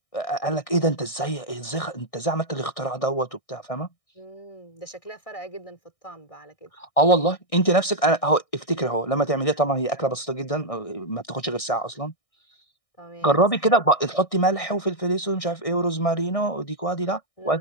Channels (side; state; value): right; late; 1.6 ms